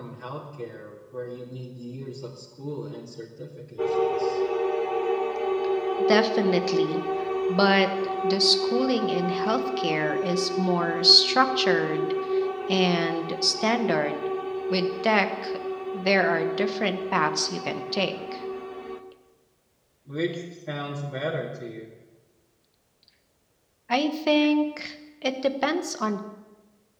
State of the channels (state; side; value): identical; both; correlation 1.00